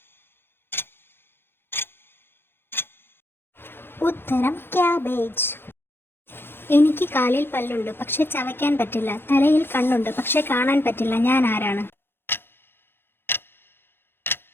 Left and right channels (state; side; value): late; right; 0.10 ms